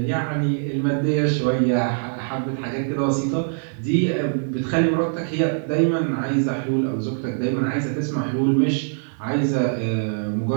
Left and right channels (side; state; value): left; silent; 64 dB below the other